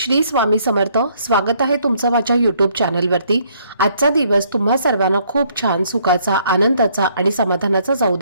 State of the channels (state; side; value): inverted; both; correlation -0.66